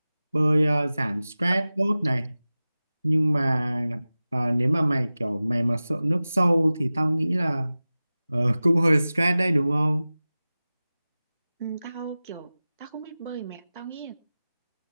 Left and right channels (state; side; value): inverted; both; correlation -0.97